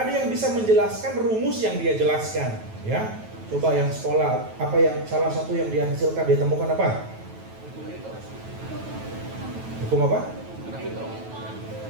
ada yang bisa menjelaskan rumus yang dia jelaskan, ya. Coba yang sekolah, apa yang salah satu yang dia hasilkan, dia temukan apa? Hukum apa?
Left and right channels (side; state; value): left; late; 9.2 ms